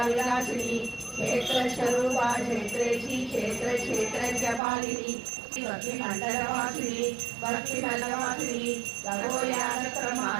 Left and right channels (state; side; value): drops out; left; at 4.6 s